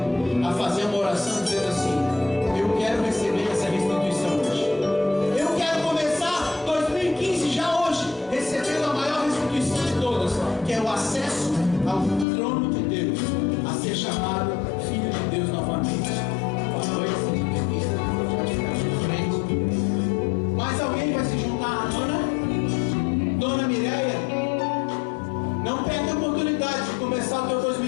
a fazer uma oração dizendo assim: eu quero receber essa restituição hoje. Eu quero começar 2015 já hoje, recebendo a maior restituição de todas, que é o acesso ao trono de Deus, a ser chamado filho de Deus novamente. Boa noite, seja bem-vindo. Mais alguém vai se juntar à Dona Mireia? Não perde a oportunidade de começar o teu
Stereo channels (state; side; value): drops out; right; at 12.2 s